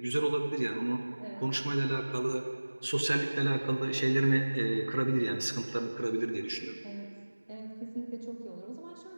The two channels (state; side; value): inverted; both; correlation -1.00